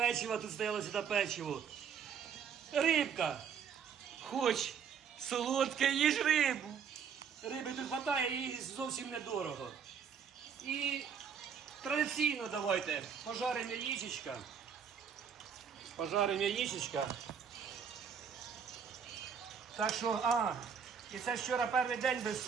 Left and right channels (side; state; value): left; quieter; 7.2 dB